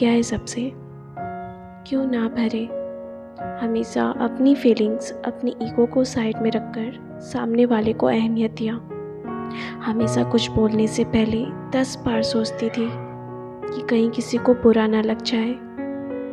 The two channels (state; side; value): identical; both; correlation 1.00